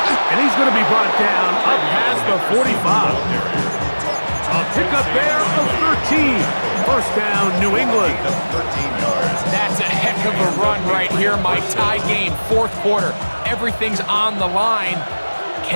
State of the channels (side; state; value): both; inverted; correlation -1.00